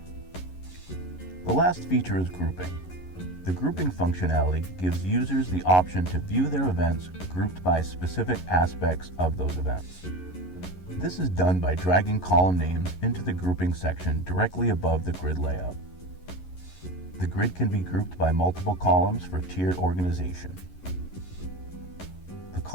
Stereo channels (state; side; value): late; right; 11 ms